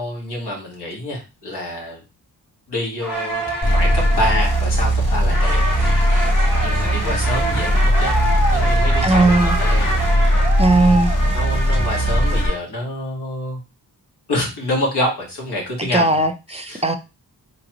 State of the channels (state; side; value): normal; both; correlation 0.70